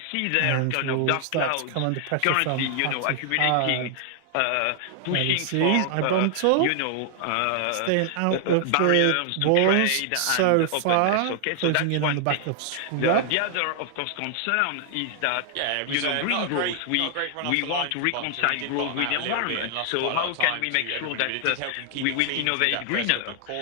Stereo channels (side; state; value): both; different; correlation 0.00